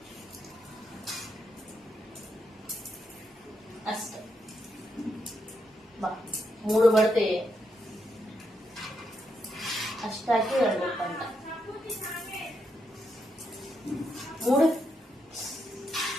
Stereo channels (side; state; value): both; normal; correlation 0.81